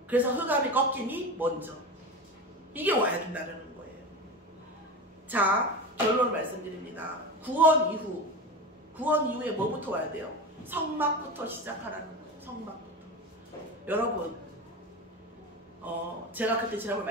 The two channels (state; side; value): normal; both; correlation 0.26